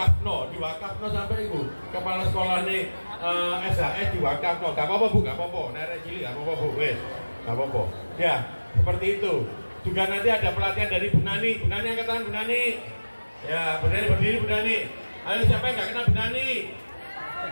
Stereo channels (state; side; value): inverted; both; correlation -1.00